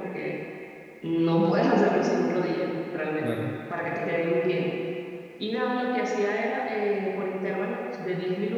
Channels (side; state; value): both; identical; correlation 1.00